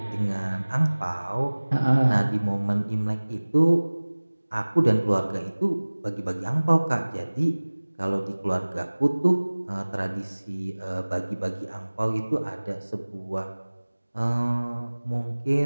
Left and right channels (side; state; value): both; inverted; correlation -1.00